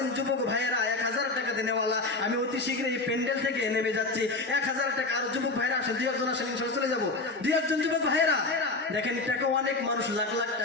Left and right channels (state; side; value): quieter; right; 3.4 dB